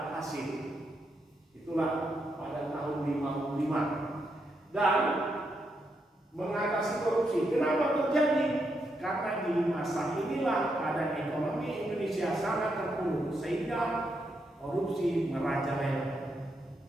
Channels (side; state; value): both; normal; correlation 0.81